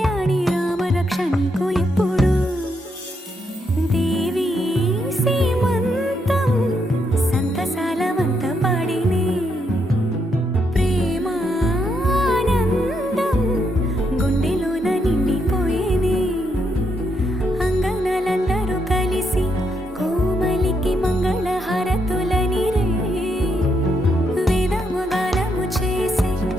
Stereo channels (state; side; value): normal; both; correlation 0.78